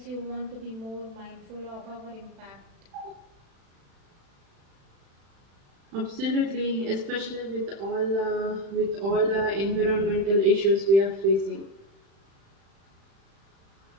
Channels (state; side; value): late; left; 36 ms